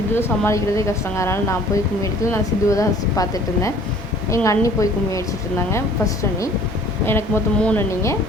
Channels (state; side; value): normal; both; correlation 0.52